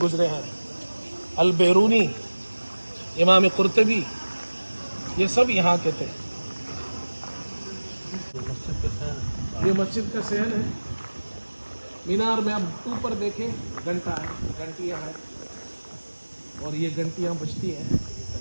हैं, अल-बैरूनी, इमाम कुर्तबी, ये सब यहाँ के थे। ये मस्जिद का सहन है। मीनार में अब ऊपर देखें, घंटा है, घंटियाँ हैं, और ये घंटियाँ बजती हैं।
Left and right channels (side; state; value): both; inverted; correlation -1.00